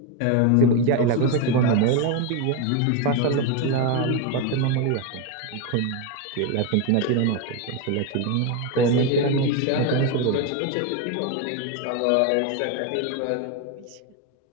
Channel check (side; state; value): both; different; correlation 0.02